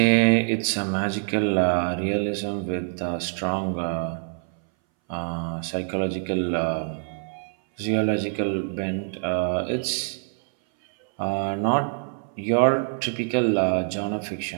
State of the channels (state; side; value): silent; left; 60 dB below the other